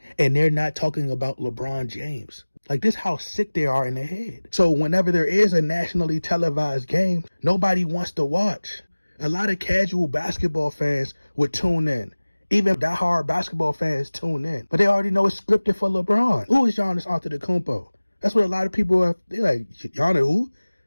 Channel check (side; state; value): both; inverted; correlation -1.00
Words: And they're not talking about LeBron James. Like, this how sick they are in their head. So whenever there is a nationally televised game, nobody wants to watch. A lot of casual basketball fans would tune in. Even diehard basketball fans tune in. But they already know it's scripted for LeBron. Who is Giannis Antetokounmpo? That's what a lot of people are. They're like, Giannis who?